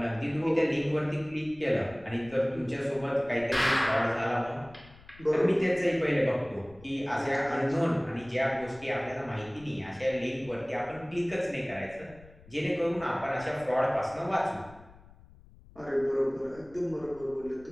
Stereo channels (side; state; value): left; noise; rumble, 23 dB below the sound